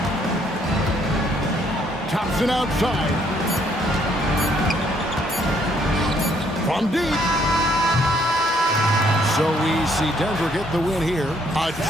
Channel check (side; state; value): both; normal; correlation 0.67